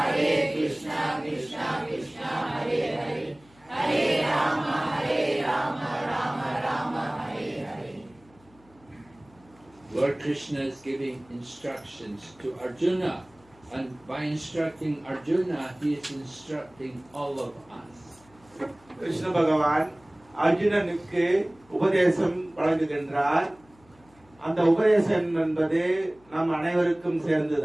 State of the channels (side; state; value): left; noise; hum, 29 dB below the sound